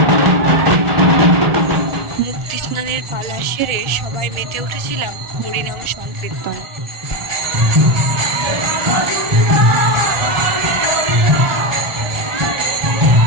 সেরে সবাই মেতে উঠেছিলাম হরিনাম সংকীর্তন।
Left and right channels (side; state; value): left; late; 1.6 ms